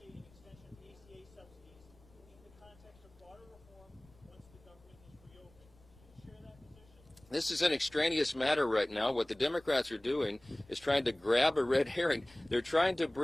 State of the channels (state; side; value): noise; left; rumble, 27 dB below the sound